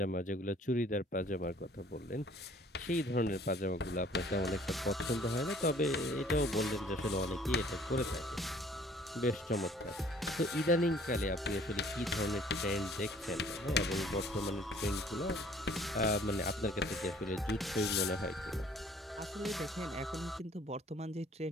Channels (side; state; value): both; normal; correlation 0.56